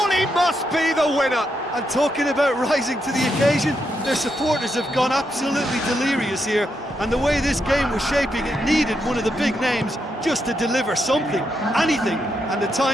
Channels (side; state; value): both; normal; correlation 0.81